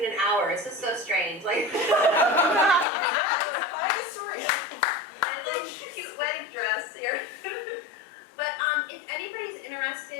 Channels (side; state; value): right; drops out; at 2.9 s